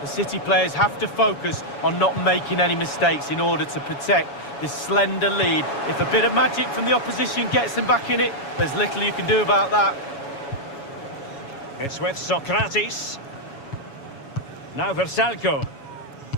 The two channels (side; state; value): right; late; 7.1 ms